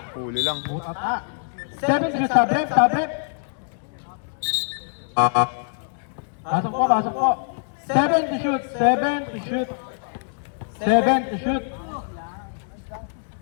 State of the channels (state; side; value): silent; right; digital silence